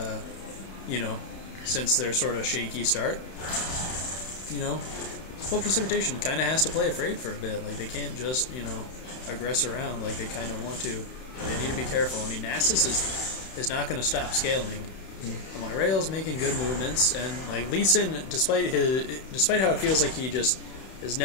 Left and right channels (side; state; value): right; late; 31 ms